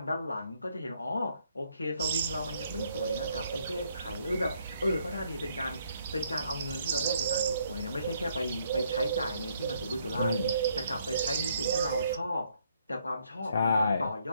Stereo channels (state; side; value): inverted; both; correlation -0.70